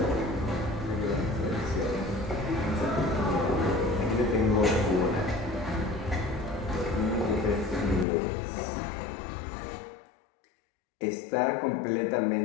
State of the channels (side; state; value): right; drops out; at 8.1 s